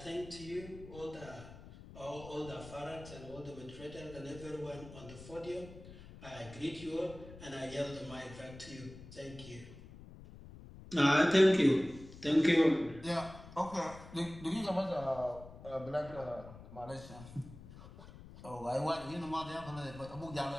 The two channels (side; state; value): left; noise; rumble, 16 dB below the sound